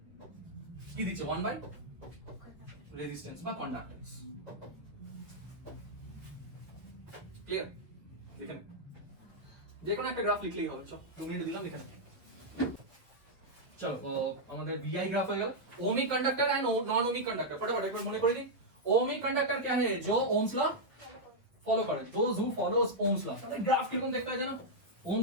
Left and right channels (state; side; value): late; left; 1.7 ms